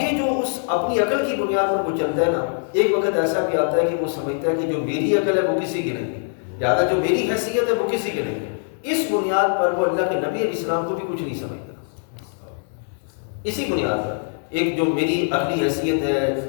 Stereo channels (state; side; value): silent; right; 64 dB below the other